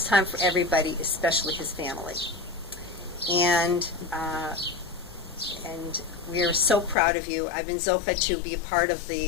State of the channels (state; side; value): drops out; right; at 7.0 s